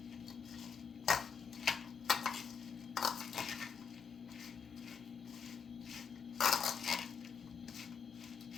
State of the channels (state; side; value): quieter; right; 6.4 dB